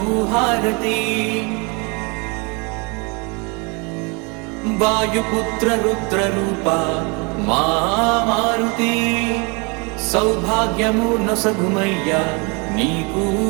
హారతి వాయుపుత్ర రుద్ర రూప మా మారుతి సౌభాగ్యము నొసగుమయ్యా నీకు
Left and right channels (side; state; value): left; quieter; 31.0 dB